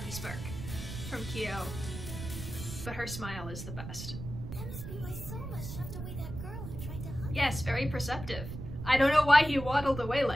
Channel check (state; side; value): noise; right; rumble, 8 dB below the sound